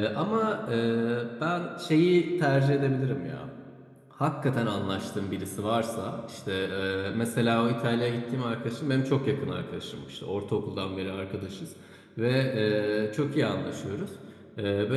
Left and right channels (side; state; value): both; identical; correlation 1.00